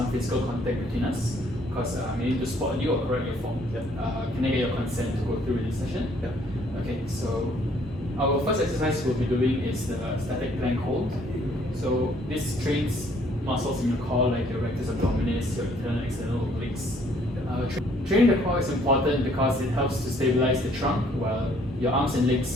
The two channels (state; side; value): normal; both; correlation 0.63